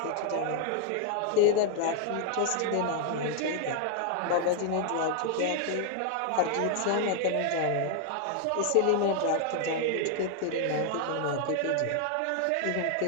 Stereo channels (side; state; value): both; different; correlation 0.00